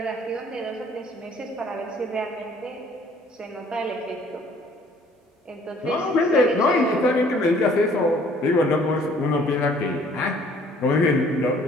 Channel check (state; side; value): normal; both; correlation 0.58